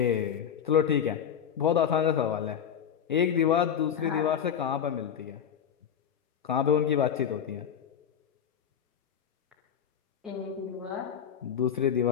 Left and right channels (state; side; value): quieter; right; 8.4 dB